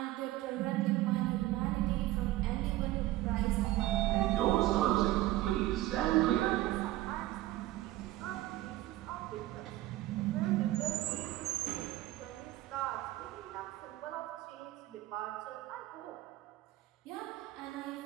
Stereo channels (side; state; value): left; quieter; 16.0 dB